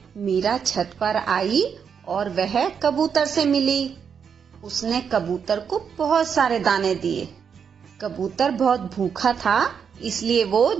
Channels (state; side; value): quieter; left; 7.0 dB